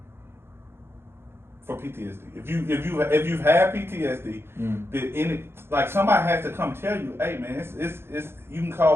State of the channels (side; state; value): left; late; 0.12 ms